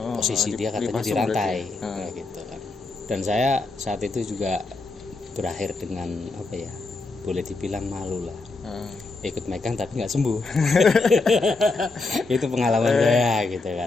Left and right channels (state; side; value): quieter; right; 3.6 dB